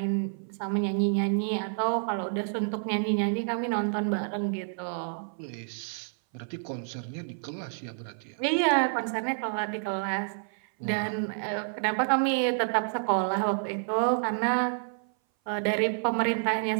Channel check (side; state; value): left; silent; 57 dB below the other